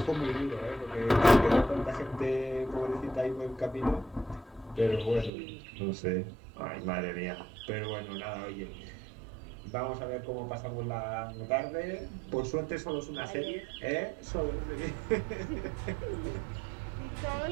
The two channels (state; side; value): drops out; left; at 5.3 s